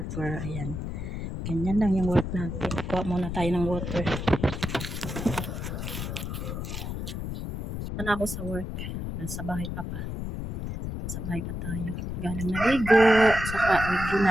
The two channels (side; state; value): left; noise; rumble, 5 dB below the sound